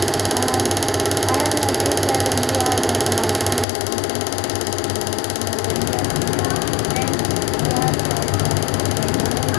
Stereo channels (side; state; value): right; drops out; at 3.7 s